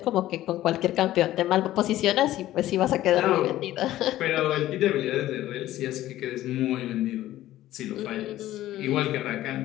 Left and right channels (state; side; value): quieter; right; 14.5 dB